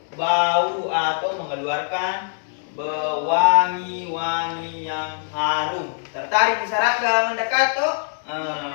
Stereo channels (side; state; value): right; silent; digital silence